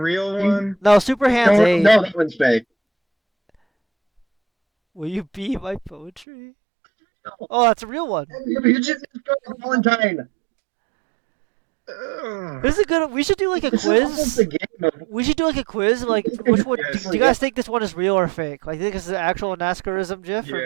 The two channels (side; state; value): left; drops out; at 6.2 s